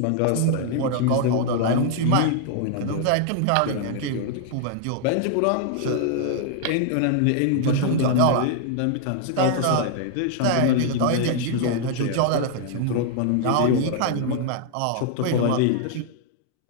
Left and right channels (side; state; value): both; different; correlation -0.01